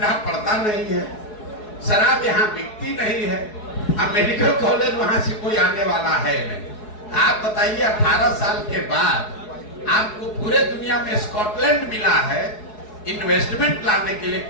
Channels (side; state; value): right; late; 4.7 ms